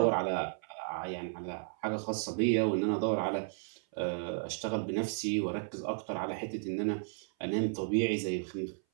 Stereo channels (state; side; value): silent; left; 55 dB below the other